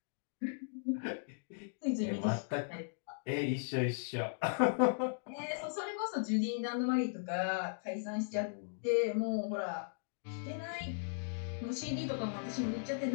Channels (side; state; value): right; silent; digital silence